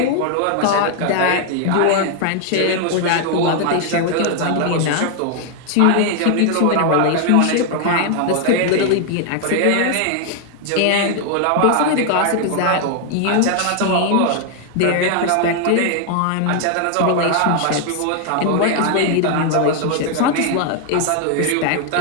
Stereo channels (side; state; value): both; different; correlation 0.00